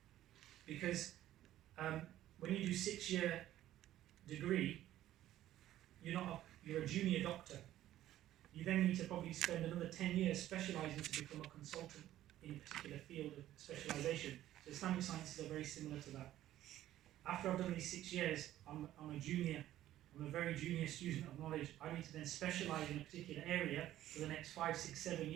when you do 6-year degree, you're a junior doctor. you then need to probably spend another 10 years specialising to become a consultant in a particular field of specialisation. So Islamic sciences are very similar to that. After I've done these 6 years, I'm a junior. I'm a very junior student of knowledge. I need to then specialise in a particular area for the next 5, 6, 7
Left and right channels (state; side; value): quieter; left; 13.4 dB